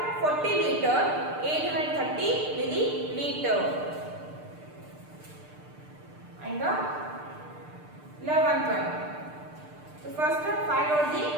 40 liter 830 milliliter. And the 11th one. So first find out the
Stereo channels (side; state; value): left; late; 6.7 ms